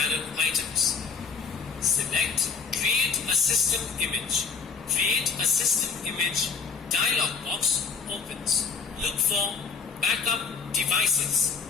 items. Select Create a System Image. Create a System Image dialog box opens. Look for Backup Devices.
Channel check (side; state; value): right; quieter; 5.5 dB